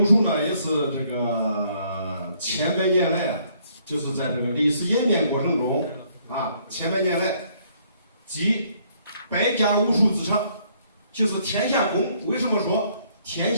武术呢，也是这个千百年来，就是在这个历史演变过程中啊，千百年来，集百家武术之长，就是天下功。为什么说天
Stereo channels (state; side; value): inverted; both; correlation -0.66